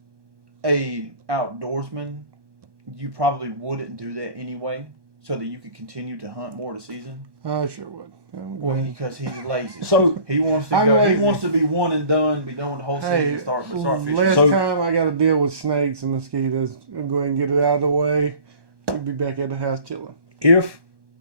a outdoorsman, you probably wouldn't do that anyway. so that you could continue to hunt more of the season? I sure would. Well, because he's lazy. So He wants to I'm go. He lazy. wants to be one and done, be done with the whole season, Hey, and start fishing. last So- time I got to deal with snakes and mosquitoes. I'm going to get it out of the way. We'll be back at the house chilling. if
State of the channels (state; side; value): late; left; 1.1 ms